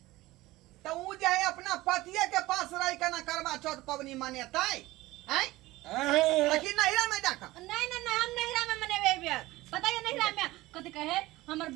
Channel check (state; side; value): quieter; left; 18.5 dB